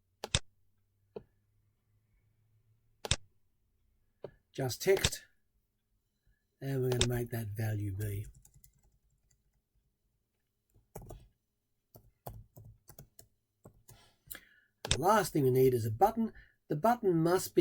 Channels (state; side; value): identical; both; correlation 1.00